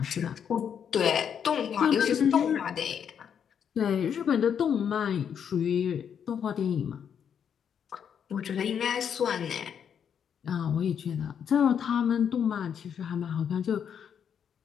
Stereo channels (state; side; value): quieter; right; 8.0 dB